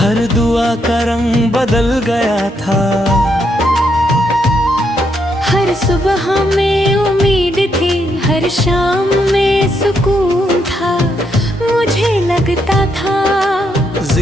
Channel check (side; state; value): both; normal; correlation 0.77